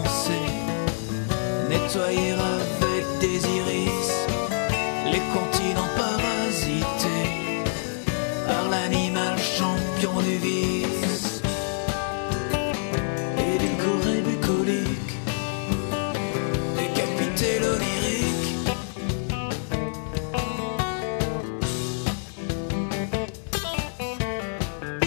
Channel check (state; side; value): silent; right; 56 dB below the other